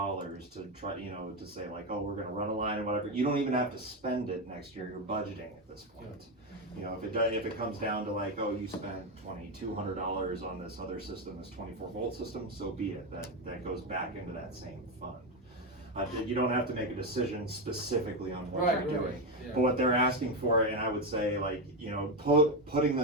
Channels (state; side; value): normal; both; correlation 0.11